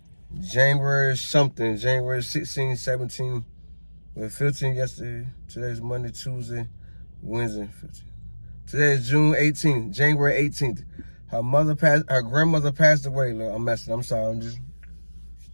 January 16, 17, well, 15 yesterday. Today's Monday, Tuesday, Wednesday, 15. Today is June 18th, January 18th. Her grandmother passed away. Look, I'm sorry.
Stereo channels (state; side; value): inverted; both; correlation -1.00